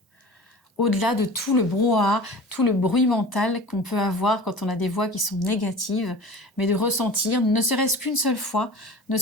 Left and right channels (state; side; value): normal; both; correlation 0.37